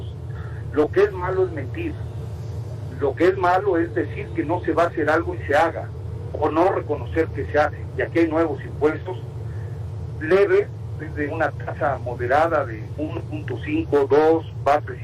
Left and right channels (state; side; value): identical; both; correlation 1.00